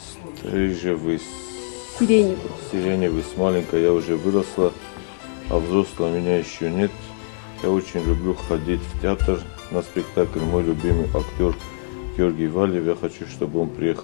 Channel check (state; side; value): silent; right; digital silence